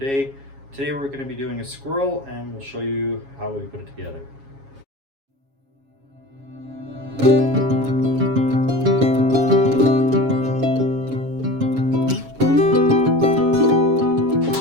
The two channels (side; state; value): left; late; 7.3 ms